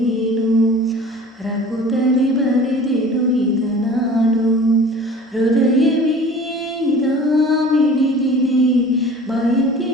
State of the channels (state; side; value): normal; both; correlation 0.44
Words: ರಘುತದೆ ಬರೆದೆನು ಇದ ನಾನು. ಹೃದಯವೇ ಇದ ಮಿಡಿದಿದೆ, ಬಯಕೆ